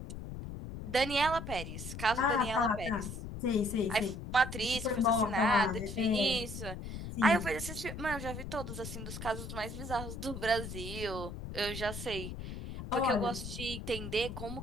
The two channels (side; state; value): left; noise; rumble, 8 dB below the sound